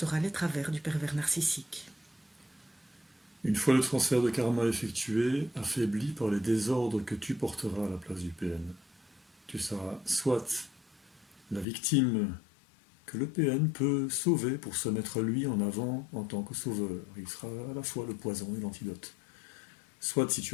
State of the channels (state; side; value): drops out; right; at 11.7 s